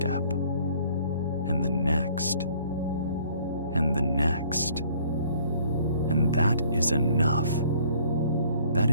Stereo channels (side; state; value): both; inverted; correlation -0.58